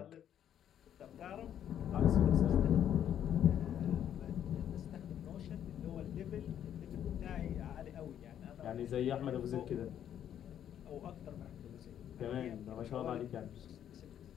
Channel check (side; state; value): right; quieter; 10.0 dB